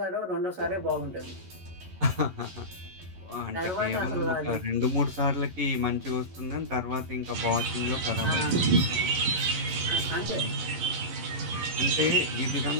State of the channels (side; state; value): left; late; 11 ms